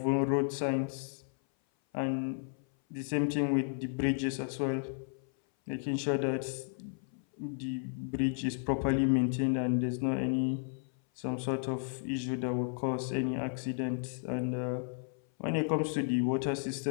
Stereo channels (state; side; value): silent; right; 56 dB below the other